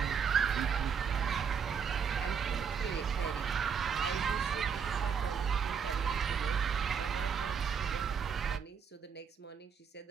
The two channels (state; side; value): quieter; left; 6.7 dB